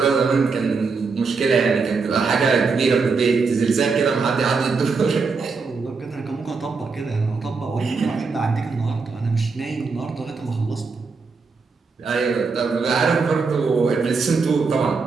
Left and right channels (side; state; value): left; quieter; 4.7 dB